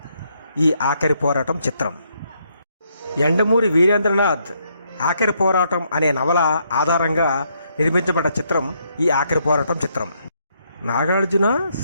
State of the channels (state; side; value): inverted; both; correlation -0.74